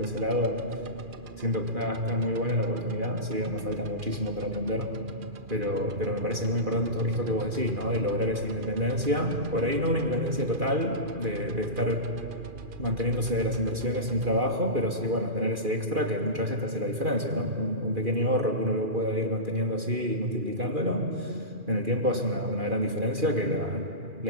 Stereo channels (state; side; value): late; left; 2.4 ms